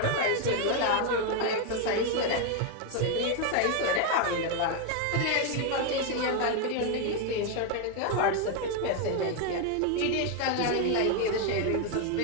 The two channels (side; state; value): both; different; correlation 0.01